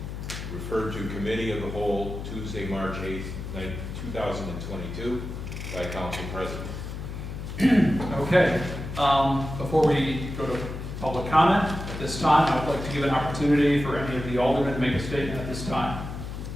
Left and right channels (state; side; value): noise; left; hum, 7 dB below the sound